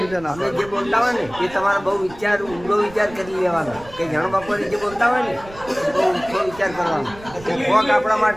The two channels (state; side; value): noise; right; rumble, 19 dB below the sound